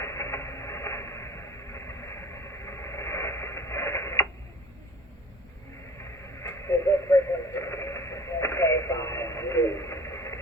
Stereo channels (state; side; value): normal; both; correlation 0.44